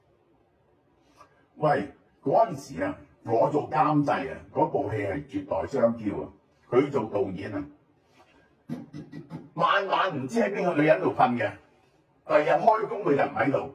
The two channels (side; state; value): both; identical; correlation 1.00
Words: 喂，嗰陣時啊，我做監製啊，嗰部戲係絕代雙驕啊，佢做導演啊，晚晚唔知喺邊個女人度瞓嘅，第日開工佢就唔喺度。